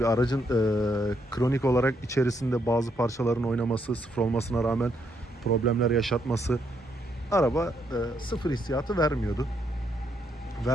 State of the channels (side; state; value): both; normal; correlation 0.75